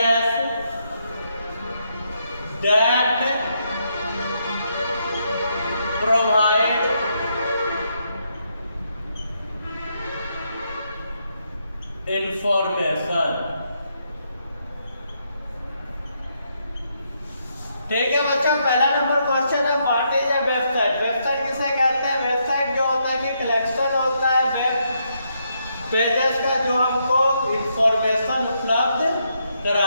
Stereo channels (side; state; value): both; inverted; correlation -0.78